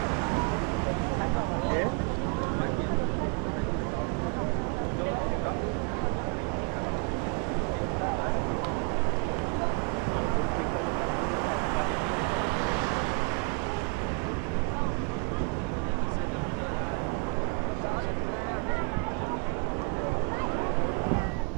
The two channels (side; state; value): left; quieter; 35.8 dB